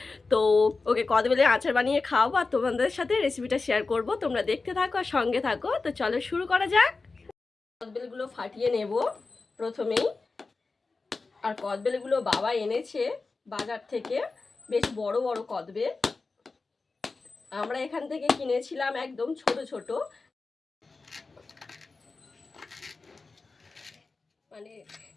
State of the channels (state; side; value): quieter; right; 3.9 dB